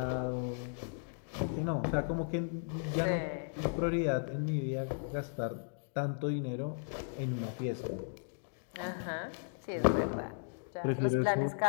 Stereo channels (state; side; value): silent; right; digital silence